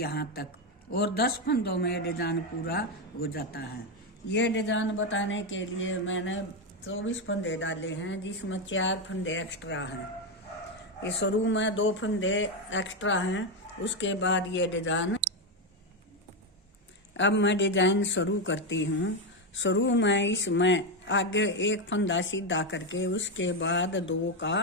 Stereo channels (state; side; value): normal; both; correlation 0.08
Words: तक, और 10 फंदों में डिजाइन पूरा हो जाता है। ये डिजाइन बताने के लिए मैंने 24 फंदे डाले हैं, जिसमें 4 फंदे एक्स्ट्रा हैं। ये शुरू में 2 फंदे एक्स्ट्रा हैं, उसके बाद ये डिजाइन। अब मैं डिजाइन शुरू करती हूँ। शुरू में इसमें आगे एक फंदा सीधा करके उसके बाद 2